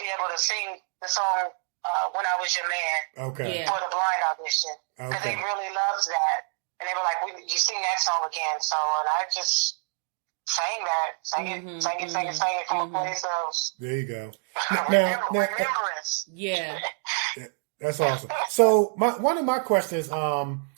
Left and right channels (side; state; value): left; silent; 60 dB below the other